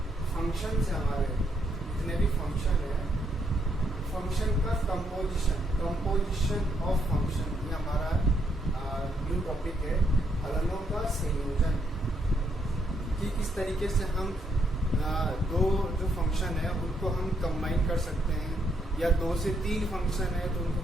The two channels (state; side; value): normal; both; correlation 0.75